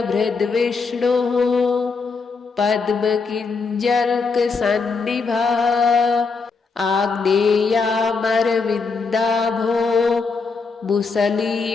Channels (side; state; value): right; quieter; 4.6 dB